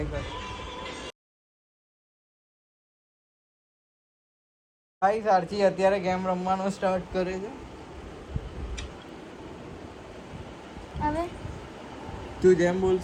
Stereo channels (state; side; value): identical; both; correlation 1.00